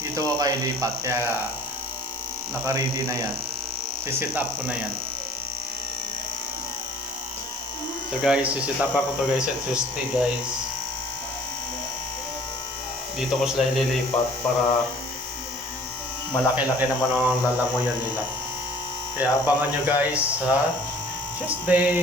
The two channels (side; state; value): both; normal; correlation 0.51